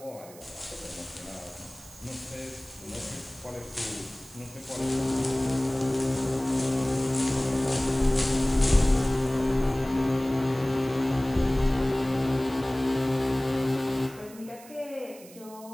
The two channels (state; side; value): noise; right; hiss, 20 dB below the sound